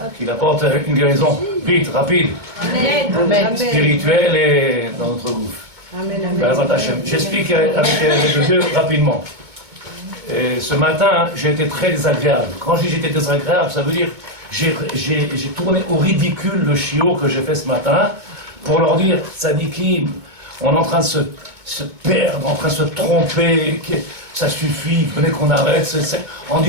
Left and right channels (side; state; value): left; late; 2.2 ms